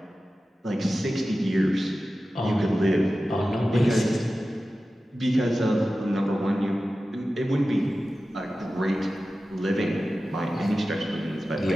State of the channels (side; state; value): both; normal; correlation 0.94